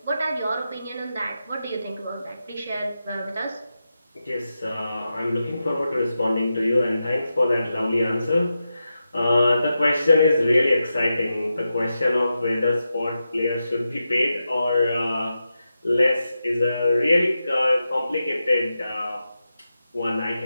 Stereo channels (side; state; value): both; inverted; correlation -0.89